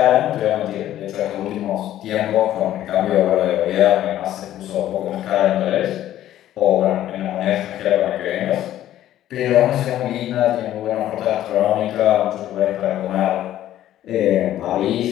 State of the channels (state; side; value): quieter; right; 12.7 dB